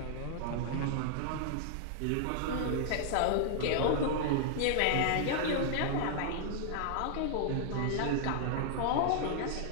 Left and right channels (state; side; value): different; both; correlation -0.01